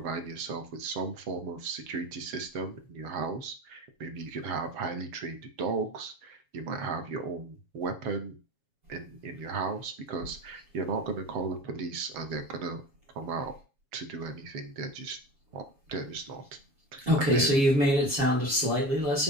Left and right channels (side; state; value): left; late; 7.3 ms